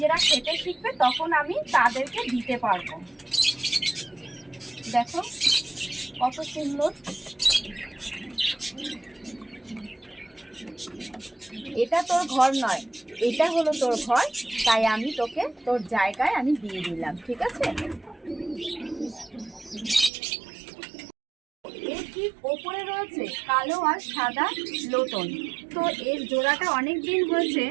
খেতে শিখবে, তখন আমি তাদেরকে দিতে পারবো। দেখো কত সুন্দর। এটা তোর ঘর নয়, এটা হলো তোর ঘর, তাই আমি তোকে তোর জায়গায় আমি দিয়ে দিলাম, ঠিক আছে? এর ঠিক ওপরে রয়েছে কালো আর সাদা লোটন। তো এর জোড়াটা অনেক দিন হয়েছে,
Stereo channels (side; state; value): left; drops out; at 20.1 s